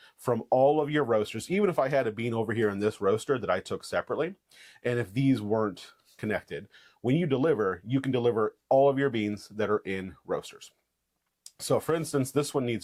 from all of your roasters, even if I had a bean over here in this roaster that I took separately. And if these weren't connected, when you deliver, you can deliver all of your beans that are in roasters. So for instance, this one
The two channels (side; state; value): both; identical; correlation 1.00